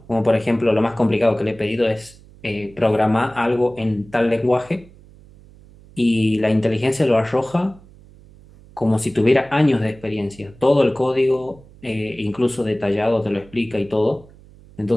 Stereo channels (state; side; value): noise; right; hum, 24 dB below the sound